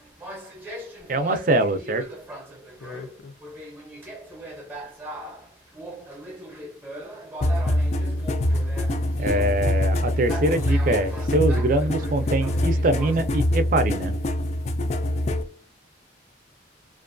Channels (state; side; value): normal; both; correlation 0.57